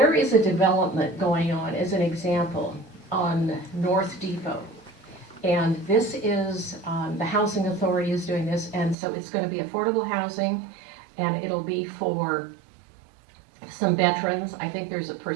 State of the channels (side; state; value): left; drops out; at 9.0 s